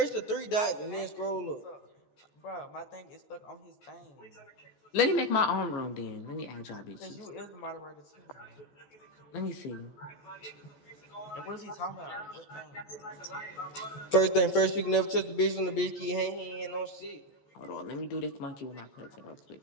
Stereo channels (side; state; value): right; late; 14 ms